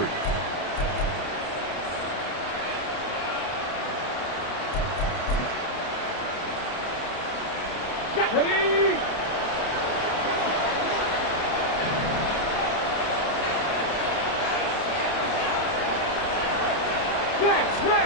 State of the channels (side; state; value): right; late; 30 ms